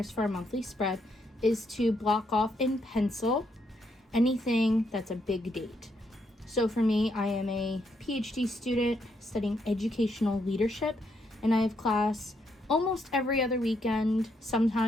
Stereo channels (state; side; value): normal; both; correlation 0.76